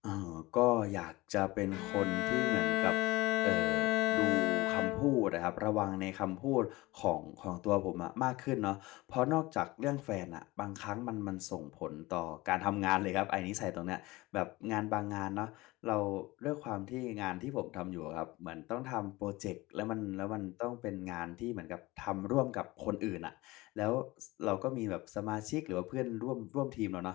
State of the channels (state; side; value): quieter; right; 20.7 dB